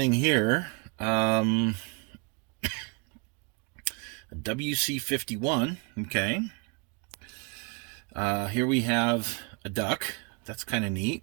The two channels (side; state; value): left; quieter; 31.9 dB